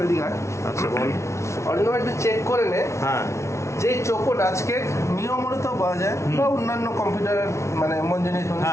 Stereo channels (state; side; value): late; right; 0.13 ms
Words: এদিকে আয়। আচ্ছা বল। অরিন্দম একটু চেক করে নে, হ্যাঁ, যে চোকো ডাচ কেক নিয়মিত পাওয়া যায় বা অন্যান্য কম্পিউটার মানে মন জিনিস